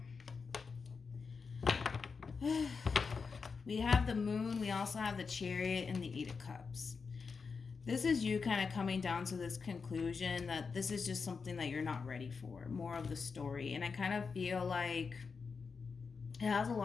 We have the Moon. We also have the Chariot and the Eight of Cups. This is you kind of coming down to this conclusion that this is just something that you're not ready for. More of the story. And I kind of feel like it has a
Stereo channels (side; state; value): right; quieter; 5.2 dB